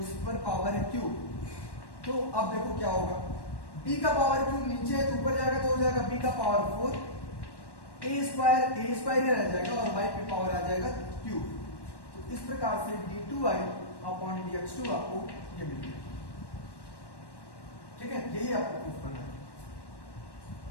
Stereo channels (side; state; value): right; late; 1.1 ms